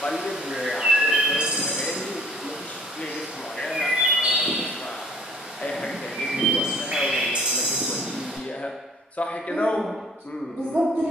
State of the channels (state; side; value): normal; both; correlation 0.55